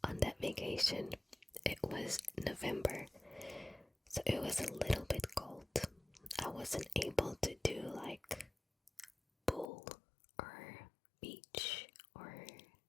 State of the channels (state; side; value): drops out; right; at 9.7 s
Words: on that vacation, it was November, so it was a little bit cold. I wasn't able to do like pool or beach or